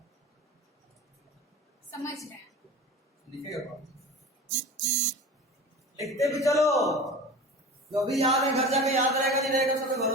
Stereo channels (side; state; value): both; normal; correlation 0.34